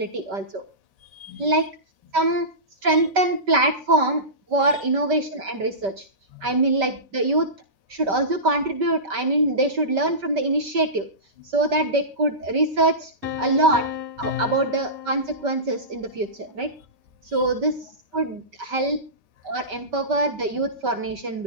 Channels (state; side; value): late; left; 5.2 ms